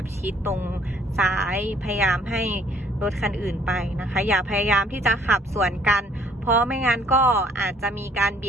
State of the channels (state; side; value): normal; both; correlation 0.61